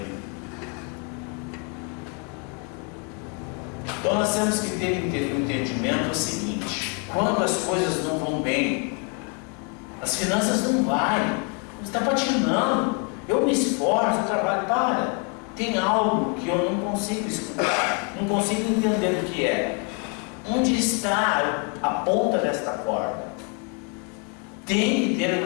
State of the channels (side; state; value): right; quieter; 36.5 dB